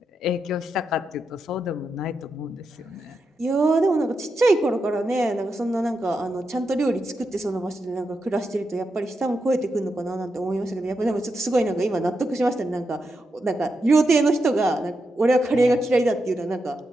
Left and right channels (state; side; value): normal; both; correlation 0.86